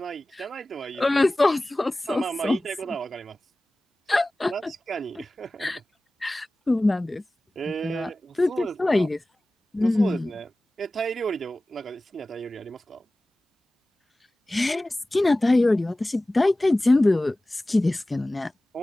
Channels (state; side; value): normal; both; correlation 0.97